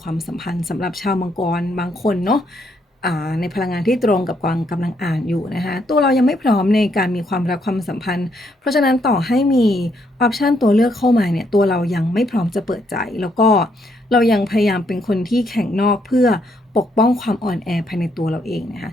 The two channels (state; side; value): normal; both; correlation 0.74